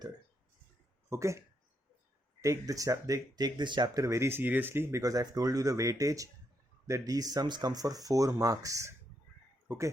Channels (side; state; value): both; normal; correlation 0.78